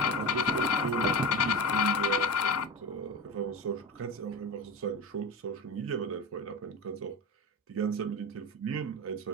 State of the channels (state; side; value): normal; both; correlation 0.25